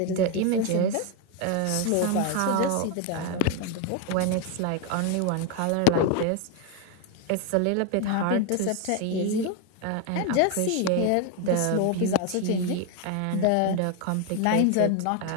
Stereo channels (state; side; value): different; both; correlation 0.01